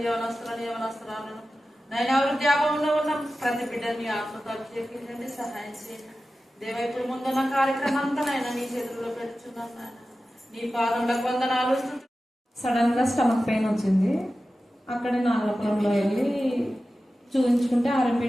యవనస్తురాలను నైనా వృద్ధాపంలో ఉన్న ప్రతి బిడ్డల్ని ఆత్మతో అభిషేకించండి, సహాయం చేయండి. దేవా ఇప్పుడు ముందున్న కార్యక్రమం అంతానైనా నీ చేతుల్లో పెట్టుచున్నాను నాయన. నీ పాదములకు వందనాలు. సడన్ గా స్టమక్ పెయిన్ వచ్చింది. అక్కడే నాగరపురంలో వెళ్ళి చూపించుకుంటే RMP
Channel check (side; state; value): both; normal; correlation 0.94